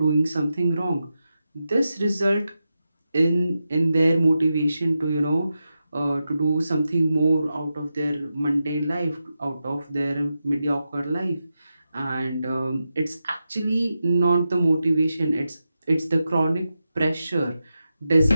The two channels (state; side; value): inverted; both; correlation -0.90